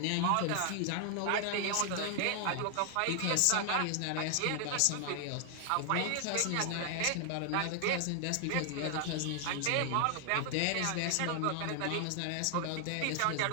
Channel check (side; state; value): both; different; correlation 0.00